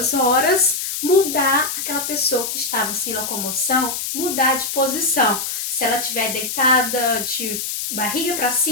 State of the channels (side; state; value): left; noise; hiss, 4 dB below the sound